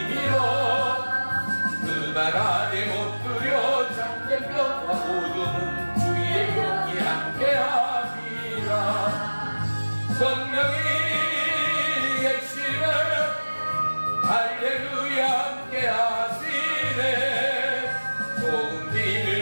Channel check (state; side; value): inverted; both; correlation -1.00